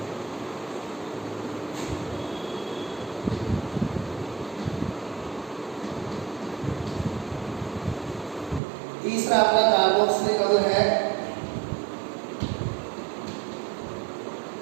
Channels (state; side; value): drops out; left; at 8.6 s